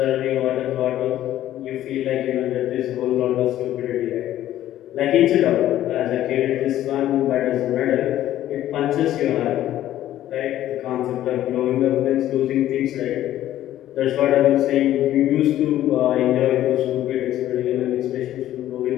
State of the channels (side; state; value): right; quieter; 12.9 dB